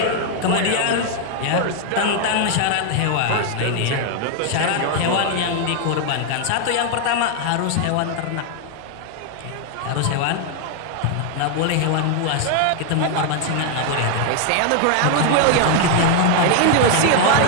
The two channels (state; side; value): different; both; correlation 0.00